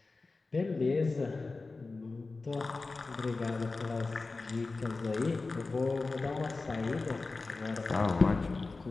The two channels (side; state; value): right; quieter; 3.7 dB